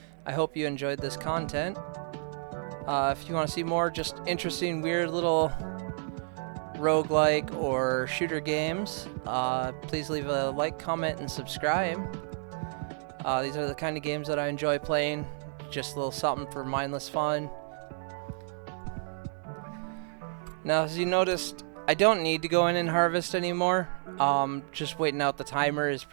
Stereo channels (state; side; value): silent; left; 58 dB below the other